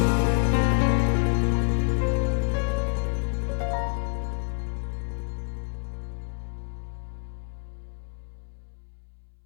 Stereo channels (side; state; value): right; silent; 60 dB below the other